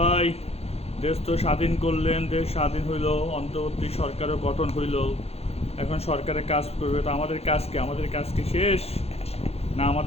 দেশ তো স্বাধীন করলেন, দেশ স্বাধীন হইল, অন্তর্বর্তী সরকারও গঠন হইল। এখন সরকারের কাজ করবে, তো আমাদের কাজ কি? আমাদের কাজ কি শেষ? না,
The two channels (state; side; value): late; right; 0.29 ms